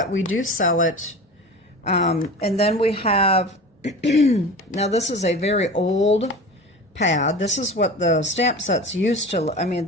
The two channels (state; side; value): normal; both; correlation 0.34